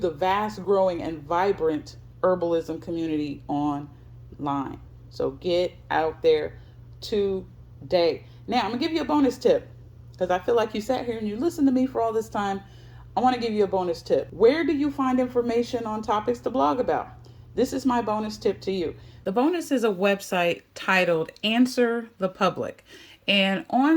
vast, growing, and vibrant herbalism community online. So get out there today. Now, I'm going to give you a bonus tip, because I feel like you sat here and you listened to me for all this time. I want to give you a bonus tip. Where do you find information on topics to blog about? This is my bonus tip to you. The bonus is a website titled Answer the Public. And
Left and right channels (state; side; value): identical; both; correlation 1.00